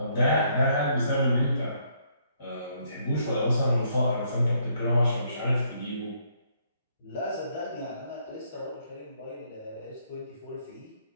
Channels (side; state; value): both; inverted; correlation -0.70